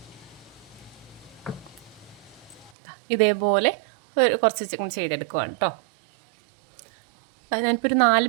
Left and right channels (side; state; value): left; drops out; at 2.7 s